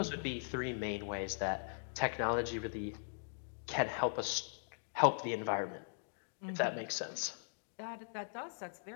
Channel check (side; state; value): right; silent; digital silence